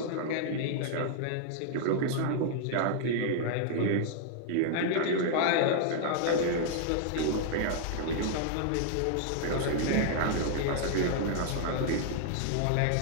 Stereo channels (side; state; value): both; different; correlation 0.00